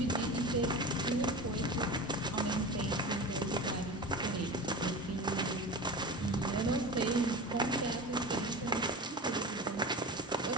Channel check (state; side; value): normal; both; correlation 0.30